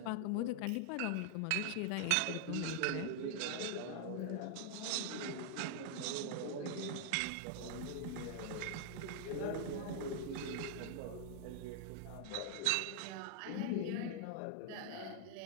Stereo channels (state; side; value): different; both; correlation 0.00